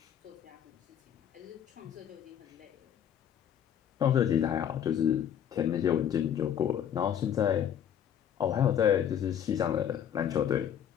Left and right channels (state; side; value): quieter; right; 9.4 dB